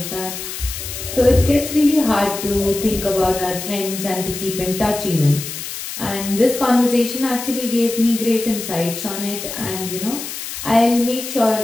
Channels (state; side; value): noise; left; hiss, 8 dB below the sound